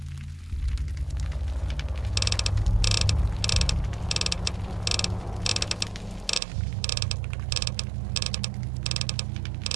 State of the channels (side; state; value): left; drops out; at 6.4 s